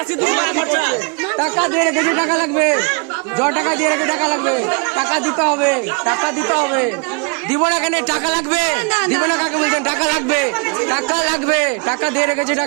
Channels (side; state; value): left; quieter; 32.7 dB